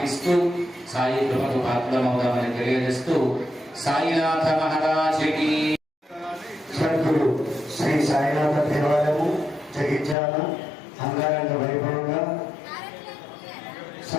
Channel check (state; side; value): drops out; right; at 10.2 s